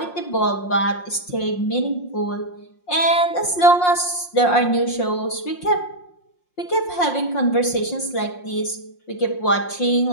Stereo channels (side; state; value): right; late; 5.6 ms